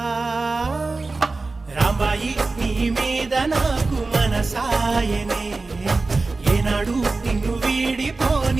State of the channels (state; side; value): quieter; left; 3.6 dB